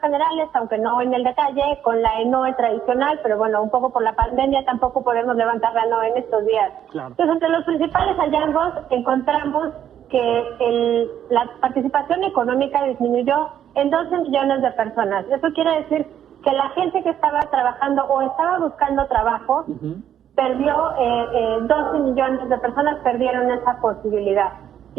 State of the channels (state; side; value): quieter; left; 10.0 dB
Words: aunque no en el detalle, con la NOE tradicional, pero bueno, un poco por la pandemia tampoco podemos levantar la NOE en estos días. Claro. Entonces, entre los principales hallazgos encontramos que la participación económica disminuyó en 12 millones de personas. Eso quiere decir que la gente que estaba trabajando o estaba buscando trabajo perdió, 12 millones de personas perdieron esa posibilidad.